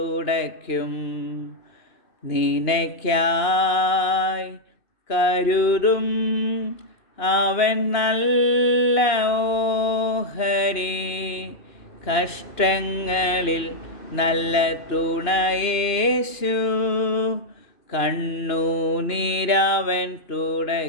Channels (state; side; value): late; right; 2.9 ms